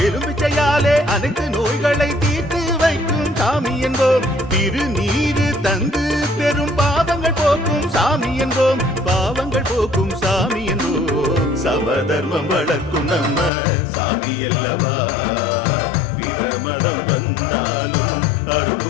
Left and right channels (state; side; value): drops out; right; at 13.5 s